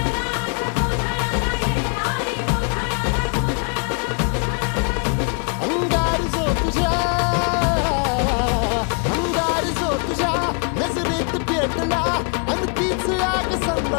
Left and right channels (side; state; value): right; quieter; 37.5 dB